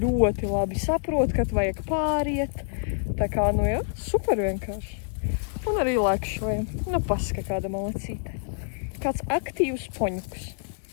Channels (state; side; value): silent; right; digital silence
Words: labi saprot, kad vajag pāriet. Tā kā, super vienkārši. Un arī lēkšojam. Paska kāda malacīte. Kāds aktīvs poņuks.